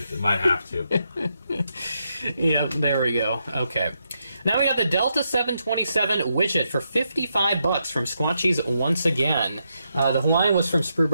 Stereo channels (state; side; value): inverted; both; correlation -0.81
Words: might have to. Yeah, there we go. Okay. Now we got the Delta 727 widget for $55 from Squatchies once again. The Hawaiian was from Sprue